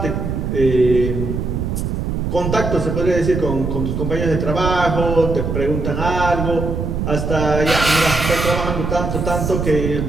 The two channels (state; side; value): noise; right; rumble, 2 dB below the sound